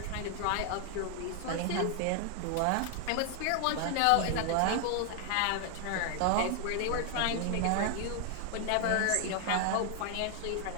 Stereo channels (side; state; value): both; different; correlation 0.00